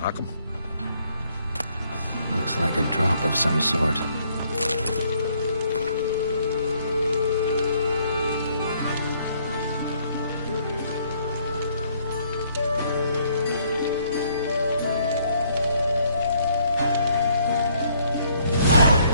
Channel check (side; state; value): both; inverted; correlation -0.67